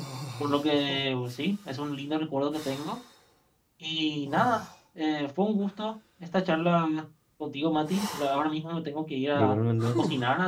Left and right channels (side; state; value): both; identical; correlation 1.00